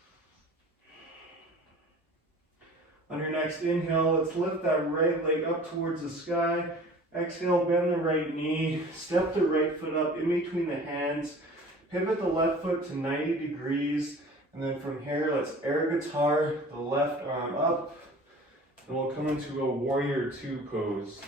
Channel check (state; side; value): normal; both; correlation 0.44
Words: On your next inhale, let's lift that right leg up towards the sky. Exhale, bend the right knee, step the right foot up in between the hands. Pivot the left foot to 90 degrees, and then from here, let's air guitar the left arm up, and we'll come into a warrior two pose.